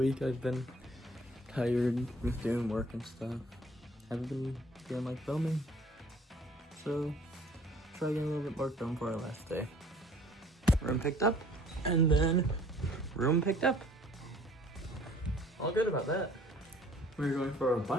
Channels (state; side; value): normal; both; correlation 0.55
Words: I've been tired with doing work and stuff. Haven't been feeling like filming. So try getting a little bit more done for our last day. Room picked up, and then room picked up. All good about that. We're going for a